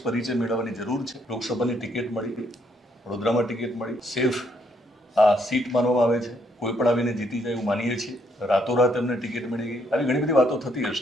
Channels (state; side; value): normal; both; correlation 0.72